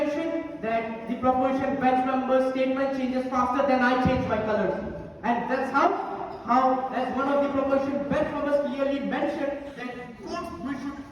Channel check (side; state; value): both; identical; correlation 1.00